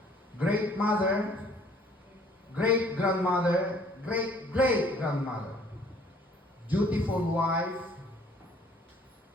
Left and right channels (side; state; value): both; normal; correlation 0.58